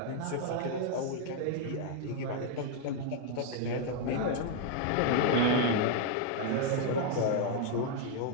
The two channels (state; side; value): different; both; correlation 0.00